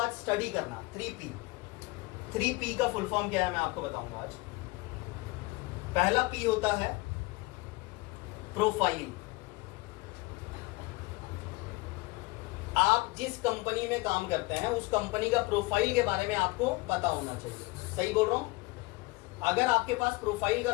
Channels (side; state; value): right; quieter; 23.5 dB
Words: स्टडी करना। 3P का फुल फॉर्म क्या है मैं आपको बताऊंगा आज। पहला P होता है प्रोफाइल। आप जिस कंपनी में काम करते हैं उस कंपनी का प्रोफाइल के बारे में आपको पता होना चाहिए। सही बोल रहा हूं? अगर आपके पास प्रोफाइल का